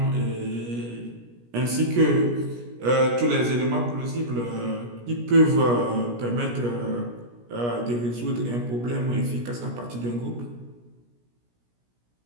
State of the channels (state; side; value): late; left; 17 ms